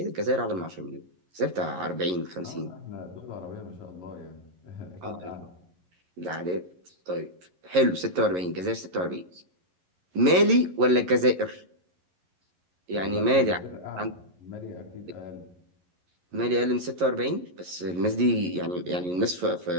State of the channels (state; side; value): late; left; 11 ms